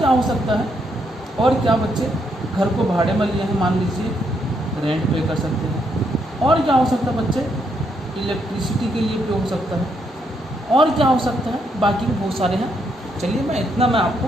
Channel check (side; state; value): both; normal; correlation 0.76